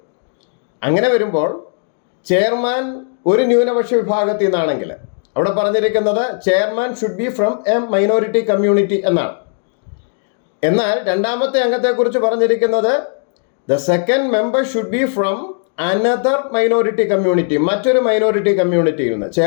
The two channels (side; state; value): right; silent; 68 dB below the other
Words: അങ്ങനെ വരുമ്പോൾ ചെയർമാൻ ഒരു ന്യൂനപക്ഷ വിഭാഗത്തിൽ നിന്നാണെങ്കിൽ അവിടെ പറഞ്ഞിരിക്കുന്നത് chairman should be from A minority community എന്നാണ്. എന്നാൽ രണ്ടാമത്തെ അംഗത്തെക്കുറിച്ച് പറഞ്ഞിരിക്കുന്നത് the second member should be from another minority community, മറ്റൊരു മൈനോറിറ്റി കമ്മ്യൂണിറ്റിയിൽ നിന്ന്.